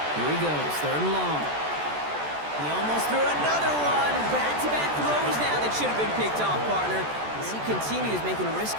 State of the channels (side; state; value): left; late; 14 ms